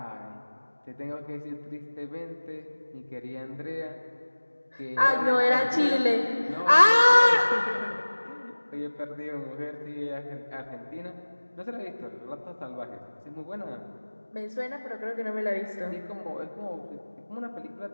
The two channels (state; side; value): inverted; both; correlation -1.00